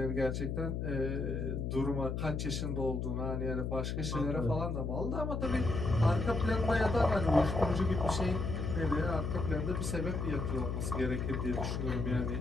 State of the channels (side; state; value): left; noise; hum, 2 dB below the sound